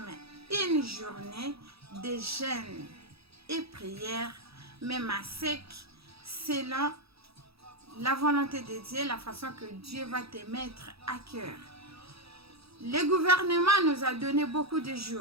une journée de jeûne et prière, même à sec, selon la volonté de Dieu, la façon que Dieu va te mettre à cœur. Le gouvernement nous a donné beaucoup de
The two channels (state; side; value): late; left; 0.77 ms